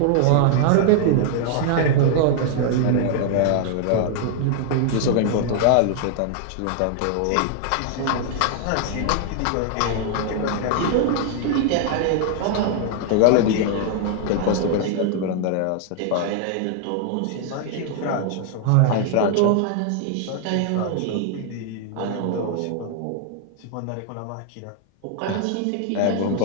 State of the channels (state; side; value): different; both; correlation 0.00